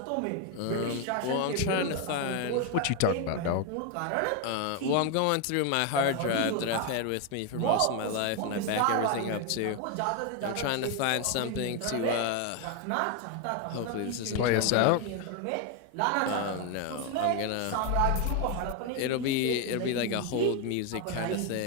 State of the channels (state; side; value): different; both; correlation 0.01